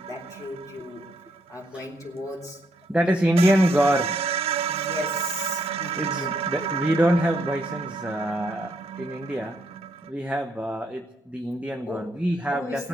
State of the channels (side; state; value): both; normal; correlation 0.74